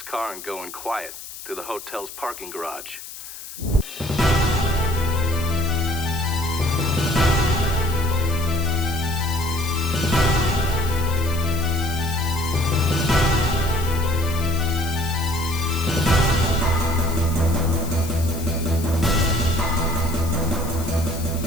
car and go in quiet through the hotel's parking garage.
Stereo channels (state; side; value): noise; left; hiss, 13 dB below the sound